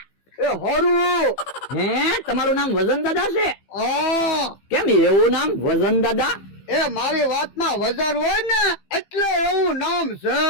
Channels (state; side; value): late; right; 15 ms